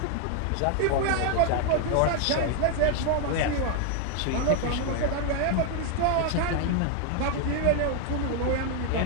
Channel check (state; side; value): different; both; correlation 0.00